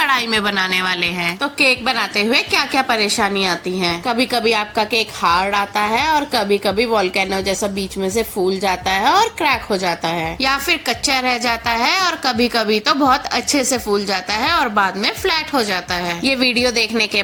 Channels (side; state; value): both; identical; correlation 1.00